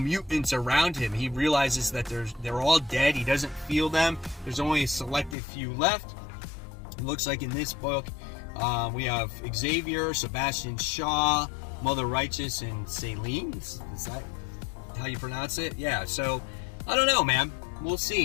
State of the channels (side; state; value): right; drops out; at 5.4 s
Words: around him. He realizes that they're all dead. He doesn't feel them. There's only a selected few left. It looks like in this book, we have Xavier, Sebastian Shaw, Mother Righteous, and Selene. Is that how you pronounce it? Yeah, so I don't know, man. We'll